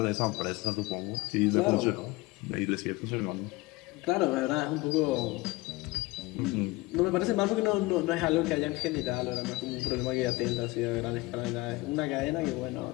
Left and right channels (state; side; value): quieter; right; 21.4 dB